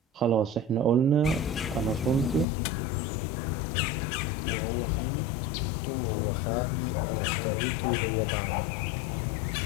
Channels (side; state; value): right; drops out; at 2.5 s